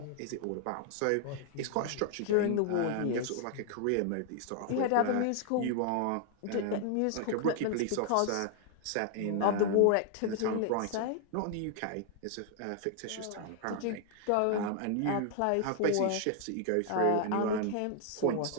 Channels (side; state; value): both; different; correlation 0.00